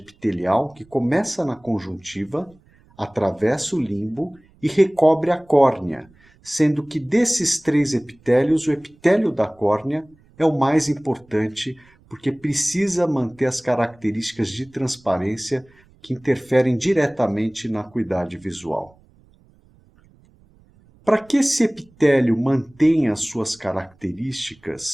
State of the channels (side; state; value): right; noise; rumble, 30 dB below the sound